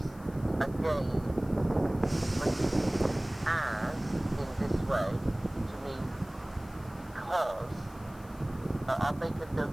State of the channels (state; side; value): noise; left; hiss, 25 dB below the sound